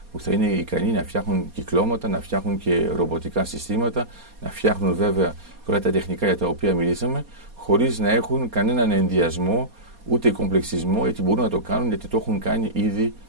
που θα είναι ικανοί να φτιάχνουν κυκλώματα, να φτιάχνουν και ρομποτικά συστήματα, να φτιάχνουν βέβαια όλα τα τεχνικά για τα οποία μιλήσαμε, χωρίς να έχουν κανέναν ενδιασμό ούτε κομπλεξισμό, γιατί μπορούν να το κάνουν γιατί το έχουν κάνει ήδη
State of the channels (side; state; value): left; late; 4.2 ms